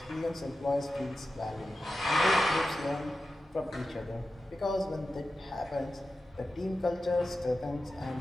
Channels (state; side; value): normal; both; correlation 0.92